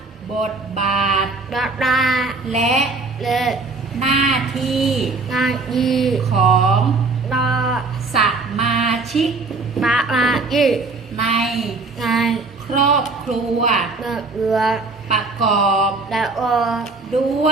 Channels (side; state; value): left; quieter; 3.8 dB